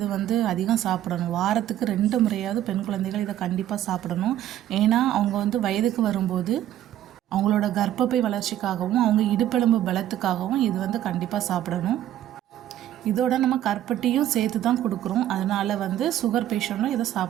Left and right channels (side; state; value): left; quieter; 12.2 dB